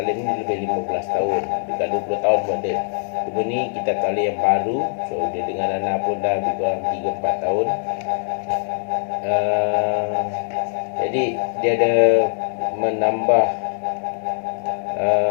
ni lebih 15 tahun, dekat 20 tahun pun ada. Cuma ni kitab taklim yang baru, so dia dengan Ana pun dah lebih kurang 3-4 tahun. Jadi dia ada menambah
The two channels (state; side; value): silent; right; 64 dB below the other